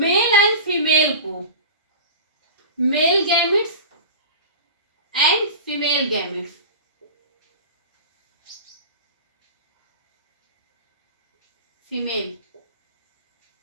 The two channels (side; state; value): both; inverted; correlation -0.33